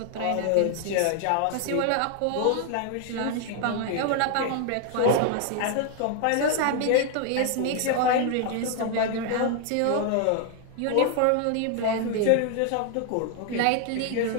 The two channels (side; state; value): both; different; correlation 0.00